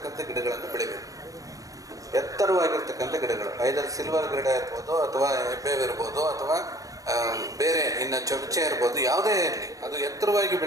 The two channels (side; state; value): left; late; 0.16 ms